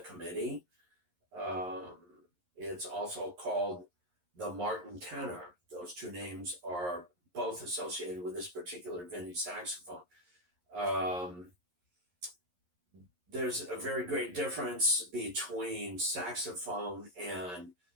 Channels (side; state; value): left; late; 11 ms